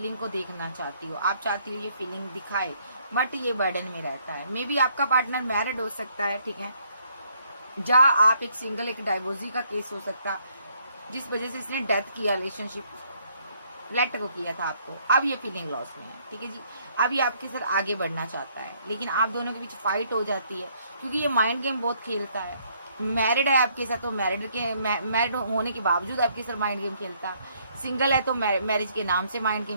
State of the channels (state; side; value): inverted; both; correlation -0.68